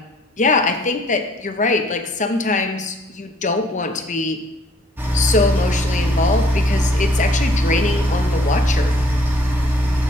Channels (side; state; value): both; normal; correlation 0.61